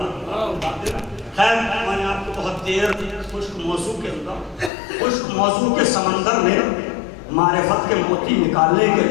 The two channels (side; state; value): right; drops out; at 4.7 s